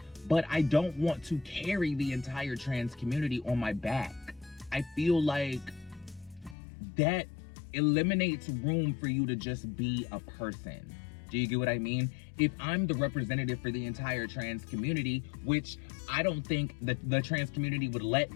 but I don't want to carry the entire trans community on my back. I feel like that eliminates room for you to just be a person. Do you get what I mean? If I'm the representative for the entire trans community, which I don't think that the trans community would let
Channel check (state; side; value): drops out; right; at 6.6 s